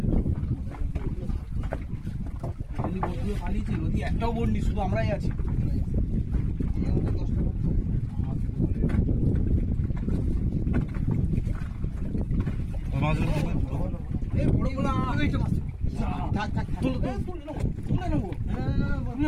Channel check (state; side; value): identical; both; correlation 1.00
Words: নদী বন্ধুও পালিয়েছে, নদী একটাও বন্ডি, শুধু আমরাই আছি। ওই মাছগুলো তুলে এই বড়গুলো তুলে নেবো।